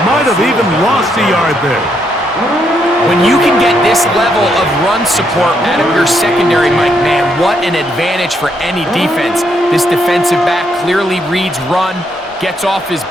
Might have even lost a yard there. When you can get this level of run support out of your secondary, Mike, man, what an advantage for any defense. This defensive back clearly reads run, gets off his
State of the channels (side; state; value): both; normal; correlation 0.76